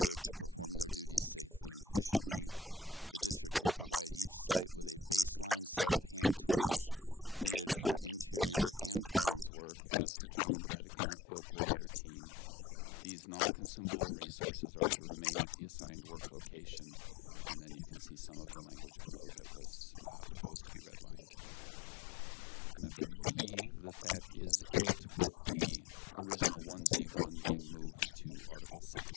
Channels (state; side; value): drops out; right; at 9.5 s